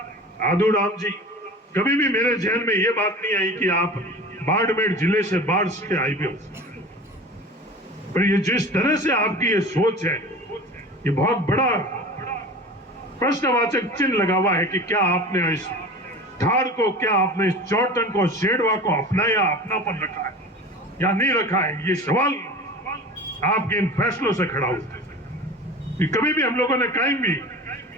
आदू राम जी, कभी भी मेरे जहन में ये बात नहीं आई कि आप बाड़मेर जिले से बाढ़ से आए भी हो, पर ये जिस तरह से आपकी ये सोच है, ये बहुत बड़ा प्रश्नवाचक चिन्ह लगा हुआ है कि क्या आपने इस धार को, क्या आपने इस चौटन को, शेड़वा को अपनाया, अपनापन रखा है या नहीं रखा है? ये सवाल आपके इन फैसलों से खड़ा होता है। कभी भी हम लोगों ने कहीं भी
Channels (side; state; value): both; normal; correlation 0.36